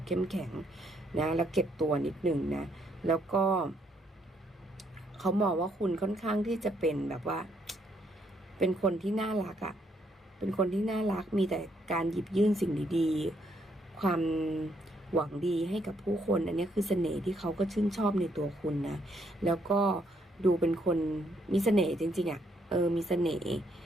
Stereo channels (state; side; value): normal; both; correlation 0.72